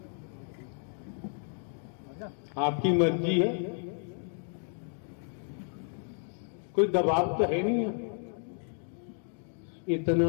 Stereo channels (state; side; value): silent; right; 56 dB below the other